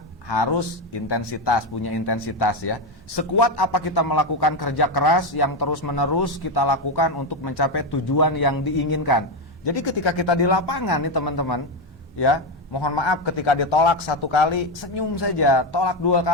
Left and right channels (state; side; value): normal; both; correlation 0.10